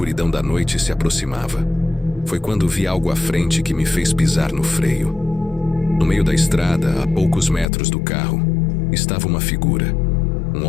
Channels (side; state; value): right; drops out; at 7.7 s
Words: da noite se aproximava. Foi quando vi algo à frente que me fez pisar no freio. No meio da estrada, a poucos metros do carro, estava uma figura. Um